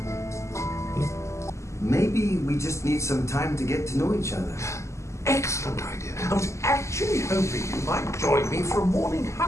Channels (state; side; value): late; right; 0.14 ms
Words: Maybe we just need some time to get to know each other. Excellent idea. I was actually hoping you might join me for a morning